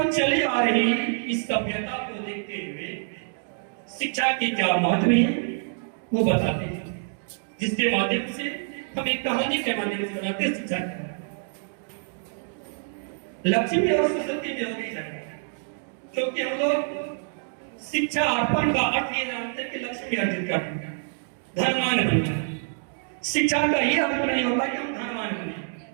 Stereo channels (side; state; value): left; silent; digital silence